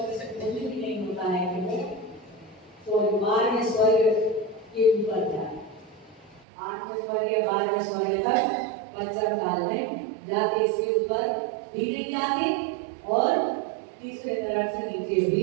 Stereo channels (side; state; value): left; drops out; at 6.5 s